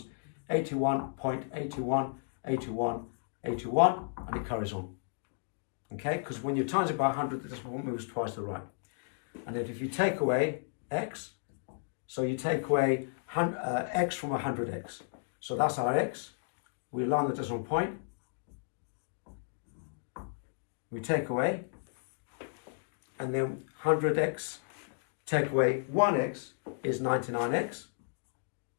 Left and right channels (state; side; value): silent; right; digital silence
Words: 81.81, 81, 81, and it carries on. Okay, because when you times it by 100, the decimal point moves twice to the right. And then if you take away x, so you take away x from 100x. So that's our x. We align the decimal point. We take away, and then 100x, take away 1x is 99x.